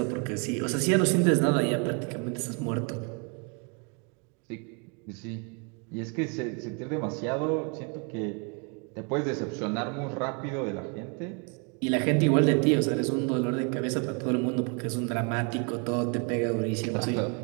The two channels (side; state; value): left; quieter; 34.9 dB